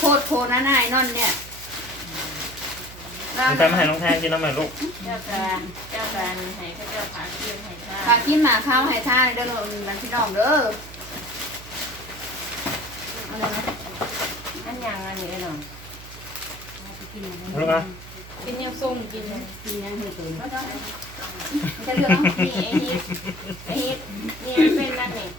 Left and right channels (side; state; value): right; noise; hum, 16 dB below the sound